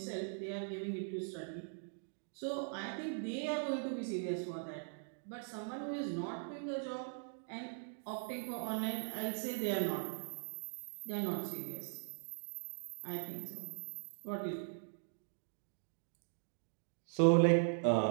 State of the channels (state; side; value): silent; left; digital silence